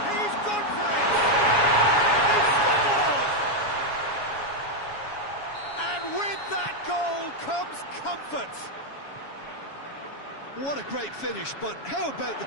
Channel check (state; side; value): late; right; 7.2 ms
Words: gone for it! He scored! And with that goal, comes comfort. What a great finish, but how about the